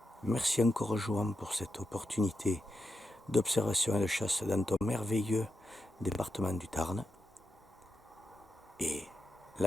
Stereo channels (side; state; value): both; normal; correlation 0.87